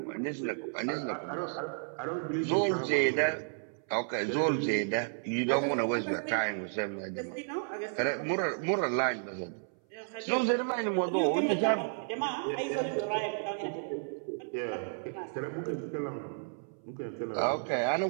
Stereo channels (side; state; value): left; silent; 56 dB below the other